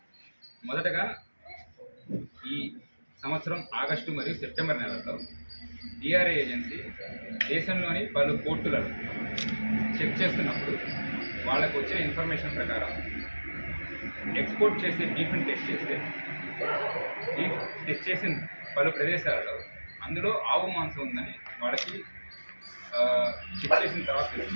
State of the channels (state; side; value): inverted; both; correlation -1.00